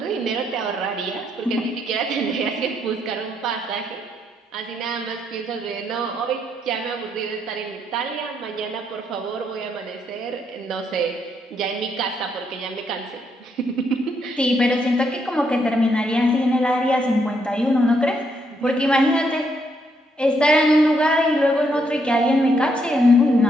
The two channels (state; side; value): normal; both; correlation 0.75